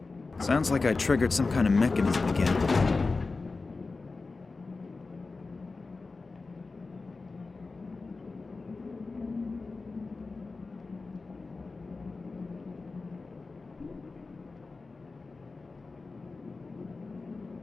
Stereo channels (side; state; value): right; quieter; 3.9 dB